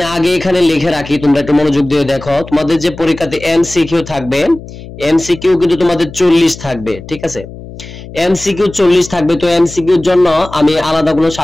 আগে এখানে লিখে রাখি, তোমরা একটু মনোযোগ দিয়ে দেখো। তোমাদের যে পরীক্ষাতে এমসিকিউ থাকবে, এমসিকিউ কিন্তু তোমাদের 40 থাকবে, ঠিক আছে? এমসিকিউ 40 থাকবে। তো এমসিকিউর জন্য আমি আলাদা কোনো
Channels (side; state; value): left; noise; hum, 15 dB below the sound